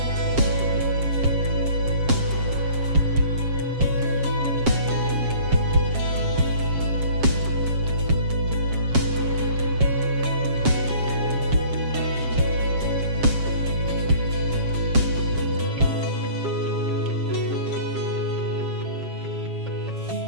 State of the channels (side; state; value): left; late; 7.3 ms